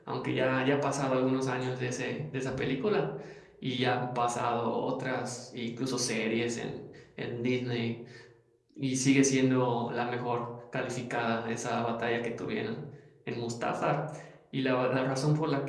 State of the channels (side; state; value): both; identical; correlation 1.00